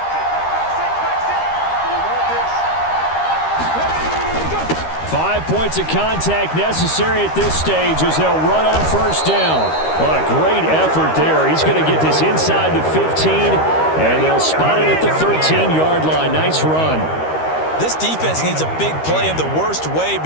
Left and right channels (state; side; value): late; right; 13 ms